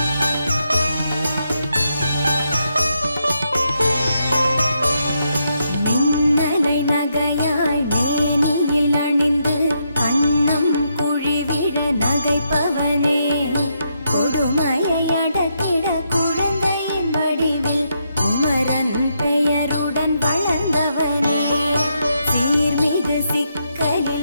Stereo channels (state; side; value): inverted; both; correlation -0.80